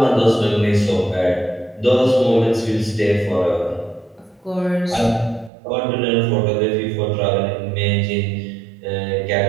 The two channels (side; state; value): left; drops out; at 5.5 s